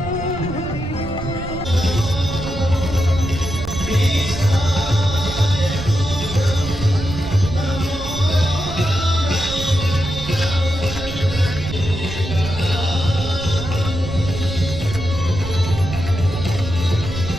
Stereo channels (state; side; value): noise; right; rumble, 9 dB below the sound